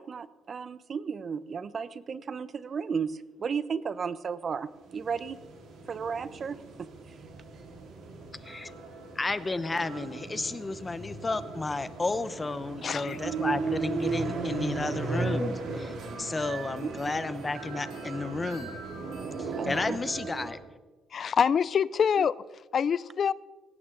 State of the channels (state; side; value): normal; both; correlation 0.81